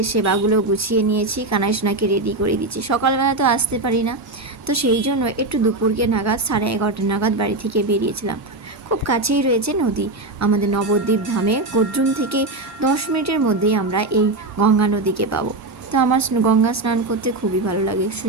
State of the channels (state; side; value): quieter; left; 3.0 dB